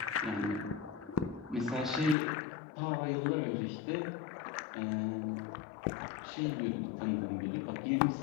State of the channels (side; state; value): right; drops out; at 2.1 s